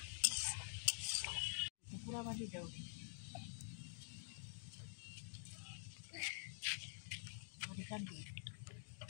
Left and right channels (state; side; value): silent; right; digital silence